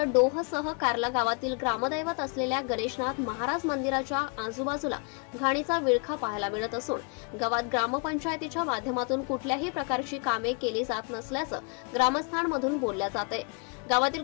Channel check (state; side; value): quieter; right; 34.7 dB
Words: डोहसह कार्ला गावातील ग्रामदैवत असलेल्या गणेशनाथ महाराज मंदिराच्या आजूबाजूला घाणीचा विळखा पाहायला मिळत असून गावात ग्रामपंचायतीच्या माध्यमातून कुठल्याही प्रकारची कामे केली जात नसल्याचं ग्रामस्थांमधून बोलल्या जाते। गावातील